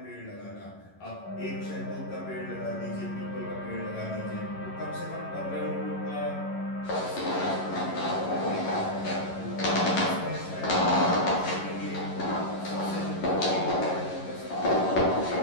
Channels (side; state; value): right; late; 11 ms